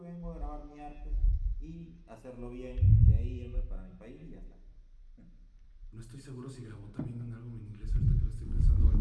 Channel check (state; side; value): identical; both; correlation 1.00